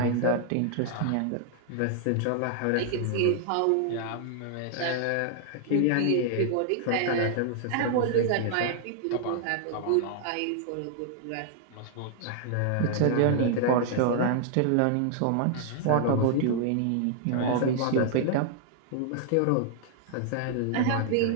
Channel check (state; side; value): different; both; correlation -0.01